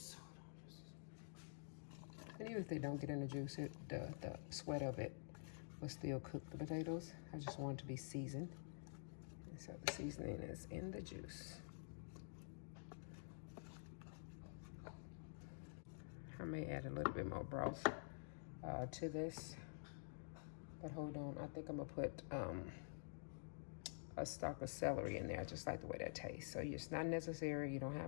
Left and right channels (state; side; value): silent; right; digital silence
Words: And even if they don't get in the juice, the sweat of it will still cook the potatoes. I just want it to be seasoned. And so the seasoning is in the juice. I may add a little bit more broth to this. But hold on, I think I'm gonna put a stalk of celery in there. I just like the way that tastes. So it's not necessary, you don't